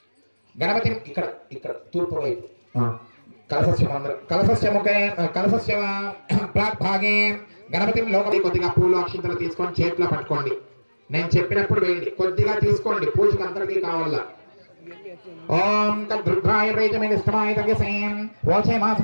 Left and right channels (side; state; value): both; inverted; correlation -1.00